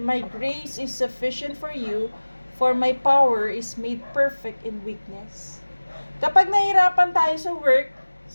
grace is sufficient for you, for my power is made perfect in weakness. Kapag nahirapan tayo sa work,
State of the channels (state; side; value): inverted; both; correlation -1.00